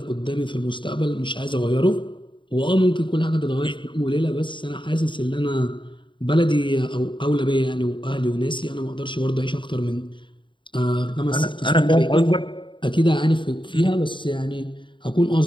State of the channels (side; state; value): right; late; 0.23 ms